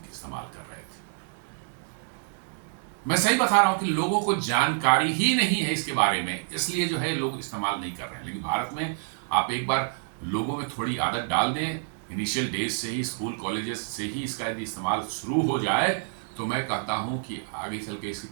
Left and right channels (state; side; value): silent; left; digital silence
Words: इस्तेमाल कर रहे थे। मैं सही बता रहा हूं कि लोगों को जानकारी ही नहीं है इसके बारे में, इसलिए जो है लोग इस्तेमाल नहीं कर रहे हैं। लेकिन भारत में आप एक बार लोगों में थोड़ी आदत डाल दें, इनिशियल डेज से ही, स्कूल कॉलेजेस से ही इसका यदि इस्तेमाल शुरू हो जाए तो मैं कहता हूं कि आगे चल के इसके